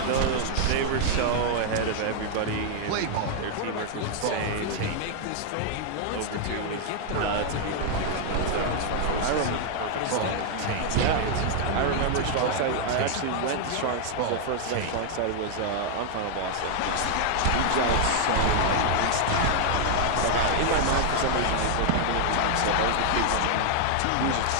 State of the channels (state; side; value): different; both; correlation 0.00